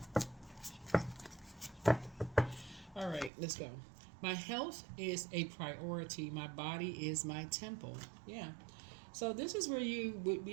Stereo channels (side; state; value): left; drops out; at 3.3 s